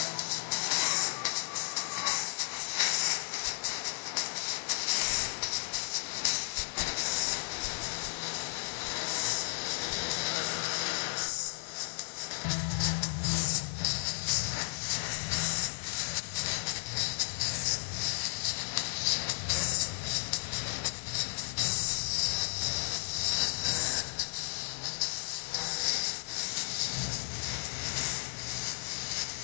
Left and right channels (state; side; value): silent; right; digital silence